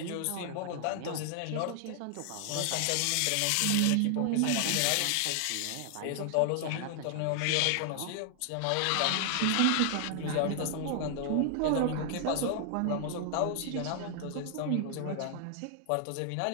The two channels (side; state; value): both; different; correlation 0.00